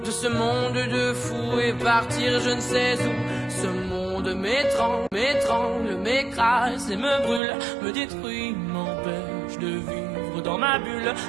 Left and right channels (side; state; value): left; drops out; at 7.4 s